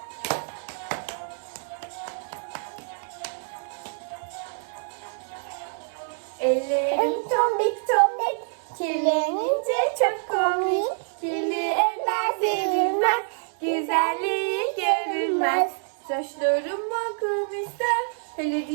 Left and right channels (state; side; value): silent; left; digital silence